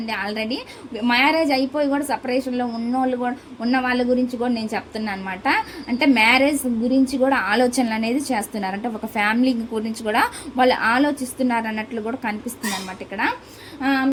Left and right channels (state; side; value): identical; both; correlation 1.00